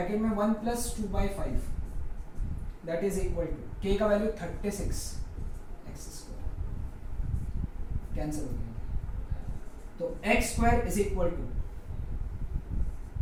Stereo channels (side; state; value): both; identical; correlation 1.00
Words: में 1 plus 2/5 that is equal to K का वैल्यू 36 एक्स स्क्वायर, कैंसिल हो गया. तो X square is equal to